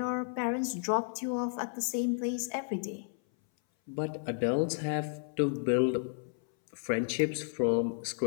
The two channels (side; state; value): right; silent; 56 dB below the other